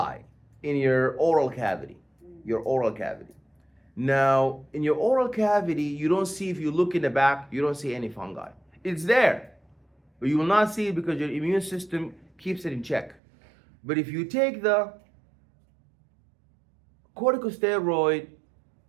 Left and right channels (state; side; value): drops out; left; at 13.2 s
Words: in your oral cavity. Now, in your oral cavity, you don't see, if you look in the back, you don't see any fungi. It's there, but you will not see it because your immune system keeps it in check. But if you take the corticosteroid